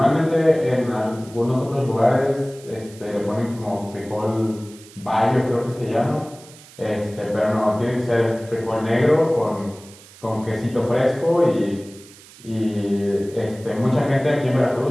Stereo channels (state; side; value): noise; right; hiss, 22 dB below the sound